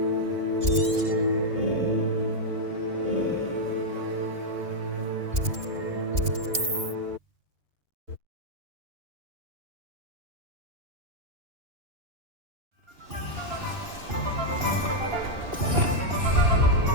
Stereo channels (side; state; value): left; late; 2.8 ms